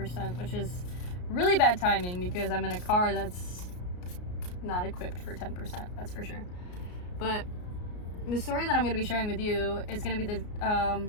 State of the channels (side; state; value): right; late; 33 ms